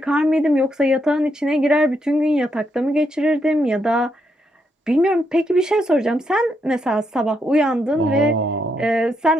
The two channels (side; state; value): both; normal; correlation 0.79